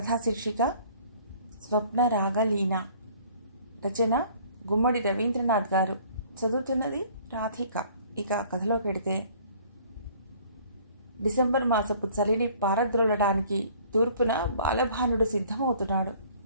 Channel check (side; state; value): both; inverted; correlation -0.54